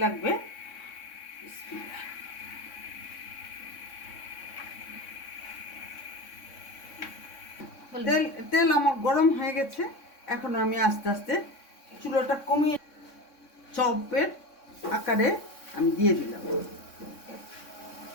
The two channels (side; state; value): right; late; 3.6 ms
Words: লাগবে। তেল তেল আমার গরম হয়ে গেছে, এখন আমি আস্তে আস্তে চুলাটা কমিয়ে চপের আকারে আমি দিয়ে দিলাম।